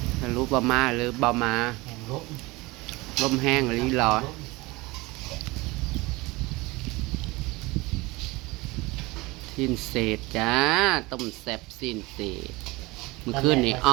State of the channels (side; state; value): left; quieter; 22.5 dB